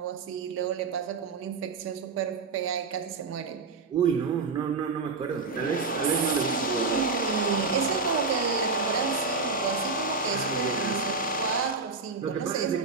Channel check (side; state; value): left; quieter; 4.3 dB